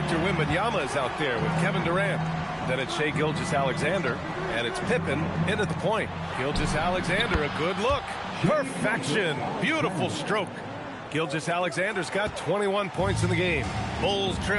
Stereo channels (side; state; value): both; identical; correlation 1.00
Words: Wembanyama is out there with Kevin Durant. Then it's Shai Gilgeous-Alexander, and it's Pippen in at the point. Gilgeous-Alexander, a good look. Perfection. Beautiful stroke. Gilgeous-Alexander's got 21 points in the game. Bulls